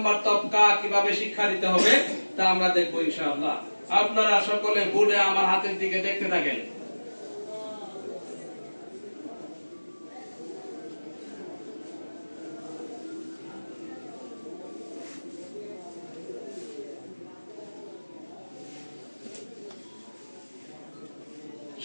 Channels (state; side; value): inverted; both; correlation -1.00